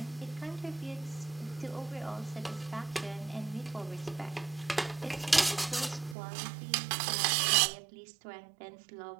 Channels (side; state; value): left; drops out; at 6.2 s